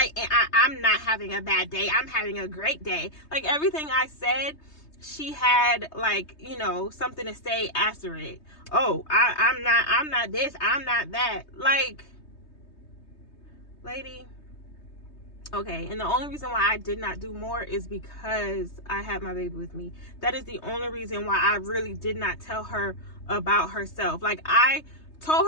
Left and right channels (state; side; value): late; right; 3.2 ms